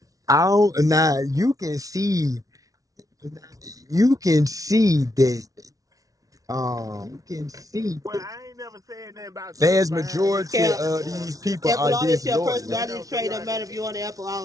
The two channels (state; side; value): late; left; 0.17 ms